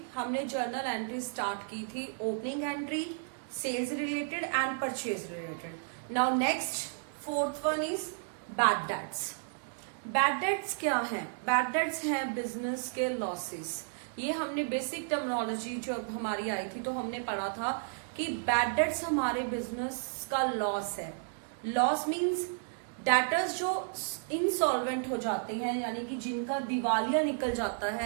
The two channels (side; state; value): left; silent; digital silence